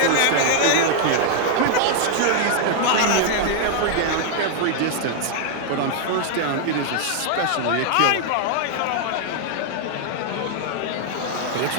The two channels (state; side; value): different; both; correlation 0.00